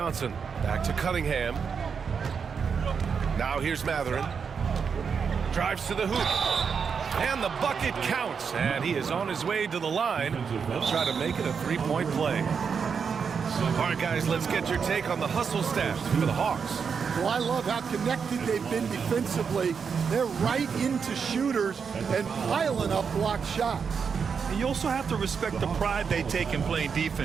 Back to Cunningham. Now here's Mathurin. Drives to the hoop. And the bucket counts. And he is on his way to the line. He'll try to make it a three-point play. All right, guys, let's get your take on the hustle stats for the Hawks. Well, I love how connected they've been defensively. They're right into shooters and piling up blocked shots. And you also have to respect the pride they take in playing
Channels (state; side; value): quieter; left; 6.2 dB